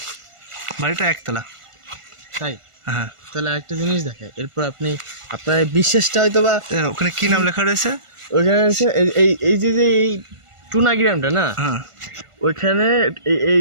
বাড়িটা একতলা। তাই? হ্যাঁ। তাহলে একটা জিনিস দেখে, এরপর আপনি আপনার বিশ্বাসটা হয়তো বা, ওখানে কি নাম লেখা রয়েছে? ওইখানে আছে এই যে এই টুনা গ্রামটা না, হ্যাঁ, ওইখানে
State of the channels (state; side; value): late; left; 1.5 ms